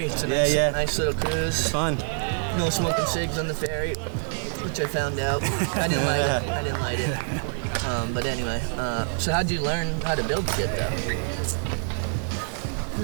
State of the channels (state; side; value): silent; left; digital silence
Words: It's a nice little cruise. It's fun. No smoking cigs on the ferry, which I found out. I didn't light it. But anyway, so how'd you learn how to build shit though?